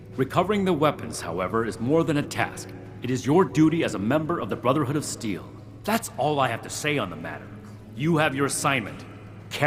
Recovering the weapons, however, is more than a task. It is your duty as a member of the Brotherhood of Steel. That's all I have to say on the matter. You have your assignment.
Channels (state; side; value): identical; both; correlation 1.00